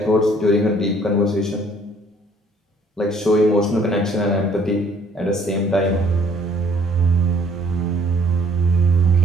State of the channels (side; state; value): both; normal; correlation 0.60